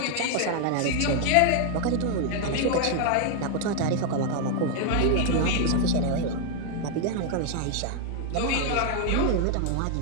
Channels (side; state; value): both; different; correlation 0.00